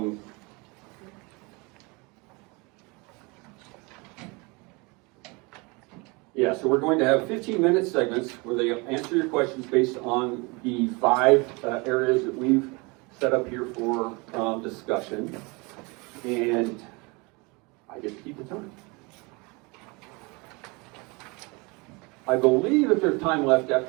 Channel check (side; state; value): left; quieter; 27.7 dB